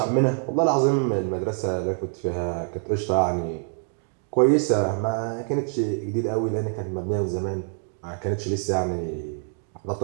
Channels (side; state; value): left; silent; 57 dB below the other